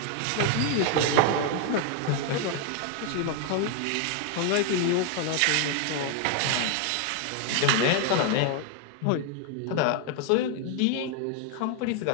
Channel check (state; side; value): different; both; correlation 0.01